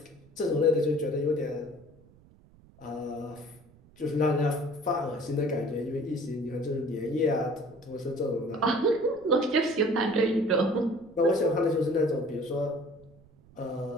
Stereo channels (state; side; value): noise; right; rumble, 26 dB below the sound